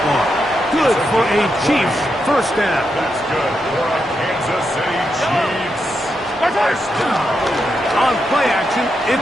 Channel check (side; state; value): both; normal; correlation 0.84